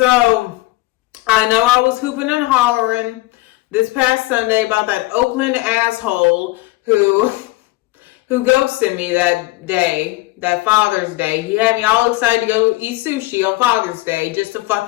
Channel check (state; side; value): quieter; right; 20.2 dB